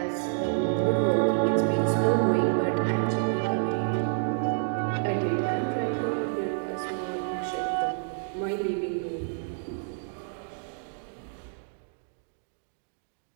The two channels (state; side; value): silent; left; digital silence